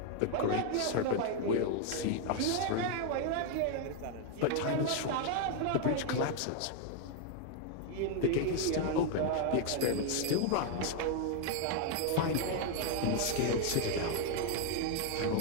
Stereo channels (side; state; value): both; different; correlation 0.00